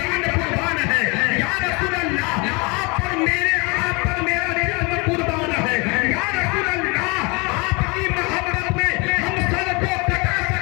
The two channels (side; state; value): right; quieter; 28.5 dB